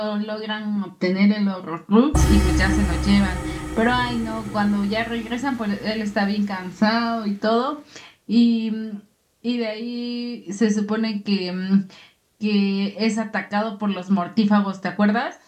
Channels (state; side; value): identical; both; correlation 1.00